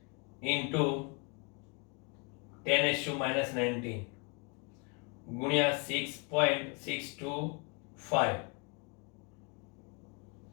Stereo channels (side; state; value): right; quieter; 33.4 dB